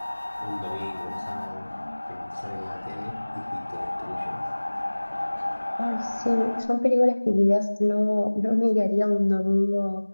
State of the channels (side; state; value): both; inverted; correlation -1.00